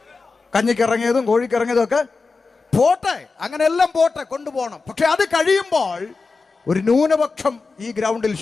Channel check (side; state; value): right; quieter; 4.2 dB